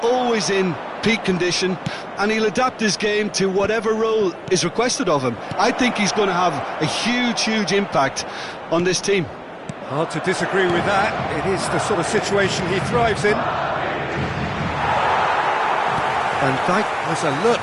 always in peak condition and he'll adapt his game to whatever role is requested of him. I think he's going to have a huge impact on this team. Hard to disagree with that. It is the sort of situation he thrives in. Van Dijk was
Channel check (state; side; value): identical; both; correlation 1.00